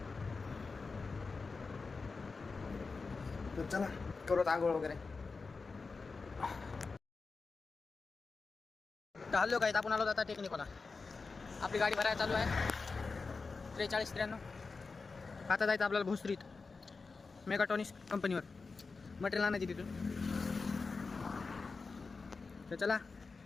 तर चला करू आंघोळ वगैरे. तर हल्लो काय, आपण आलो आता टेक्निकला. आपली गाडी भरायला चालू आहे 43-93. आता जायचं आपल्याला भोसरीत मेगाट्रॉनिक्स कंपनीवर मटेरियल आणायची तिथून. तर चला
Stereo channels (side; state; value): right; quieter; 4.3 dB